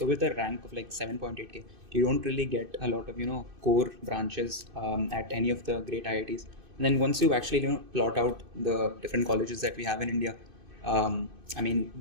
rank of like 7.8k, you don't really get a lot of, core branches at any of the great IITs. And then once you actually, plot out the different colleges that we have in India,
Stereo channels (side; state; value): left; late; 2.6 ms